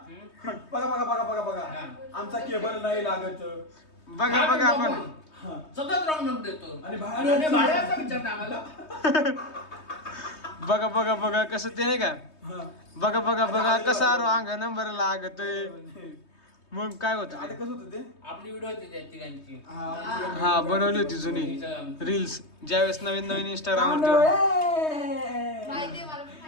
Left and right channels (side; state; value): right; late; 3.2 ms